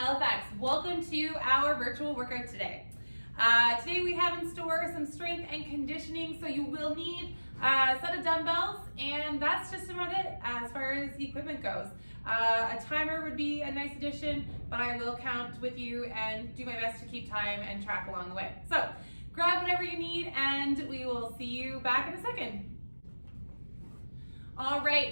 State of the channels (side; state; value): both; inverted; correlation -1.00